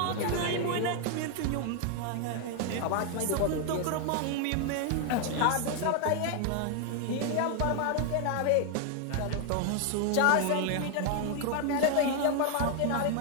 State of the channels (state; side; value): different; both; correlation 0.00